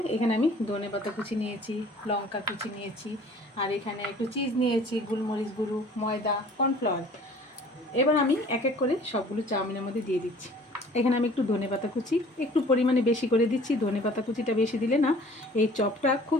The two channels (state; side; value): normal; both; correlation 0.50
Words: এখানে আমি ধনেপাতা কুচি নিয়েছি, লঙ্কা কুচি নিয়েছি, আর এখানে একটু চিজ নিয়েছি, গোলমরিচ গুঁড়ো, ময়দা, কর্নফ্লাওয়ার। এবার আমি এক এক করে সবগুলো চাউমিনের মধ্যে দিয়ে দিচ্ছি। এখানে আমি একটু ধনেপাতা কুচি একটু পরিমাণে বেশি করে দিচ্ছি। ধনেপাতা কুচিটা বেশি দিলে না এই চপটা